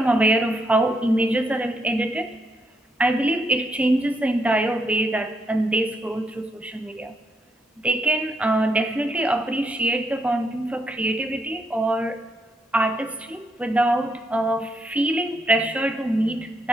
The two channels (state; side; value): normal; both; correlation 0.77